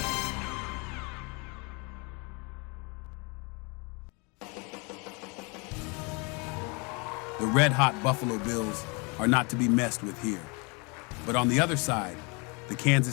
The red-hot Buffalo Bills are not to be messed with here. But on the other side, the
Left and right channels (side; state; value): right; quieter; 30.9 dB